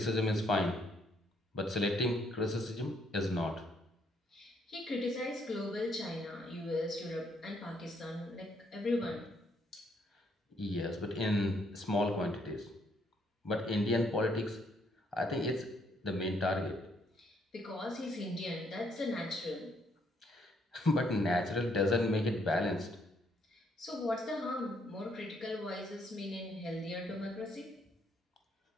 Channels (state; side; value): normal; both; correlation 0.71